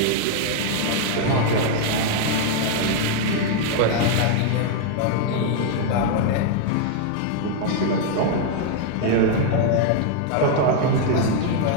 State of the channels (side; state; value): both; different; correlation 0.00